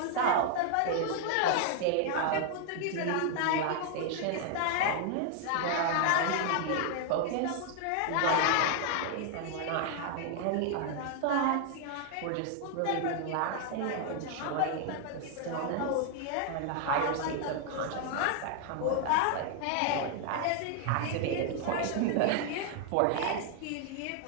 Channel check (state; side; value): different; both; correlation 0.00